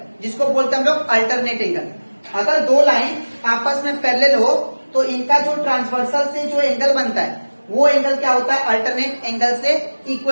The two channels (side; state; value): both; inverted; correlation -1.00